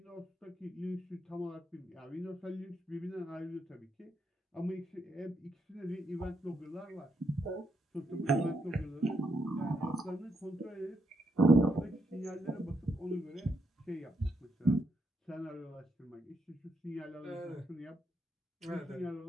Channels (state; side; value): normal; both; correlation 0.79